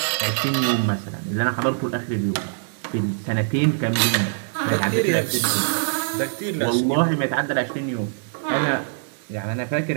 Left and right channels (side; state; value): left; silent; digital silence